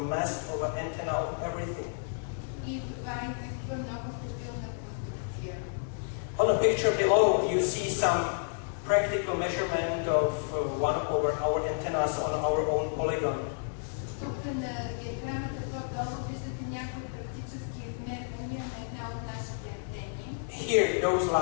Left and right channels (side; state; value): right; silent; digital silence